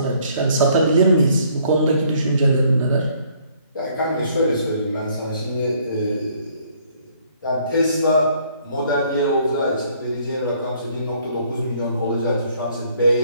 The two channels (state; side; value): inverted; both; correlation -0.63